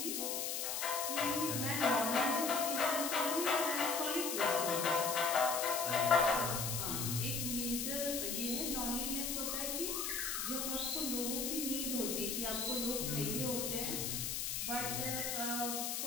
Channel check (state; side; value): noise; left; hiss, 1 dB below the sound